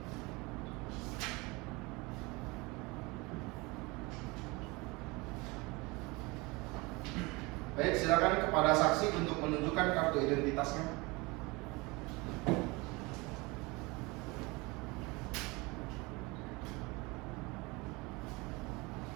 Baik, silakan kepada saksi untuk menunjukkan kartu identitasnya.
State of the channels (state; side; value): quieter; left; 25.0 dB